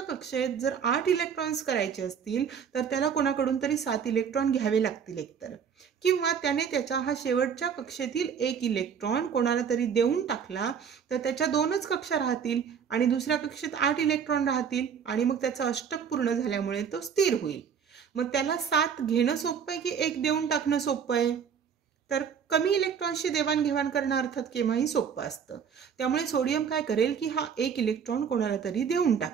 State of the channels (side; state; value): left; quieter; 7.2 dB